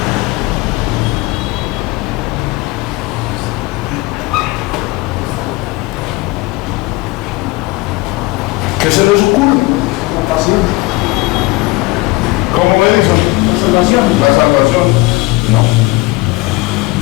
¿Qué se les ocurre? La pasión. ¿Cómo Edison? La salvación. La salvación. No.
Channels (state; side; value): quieter; right; 22.1 dB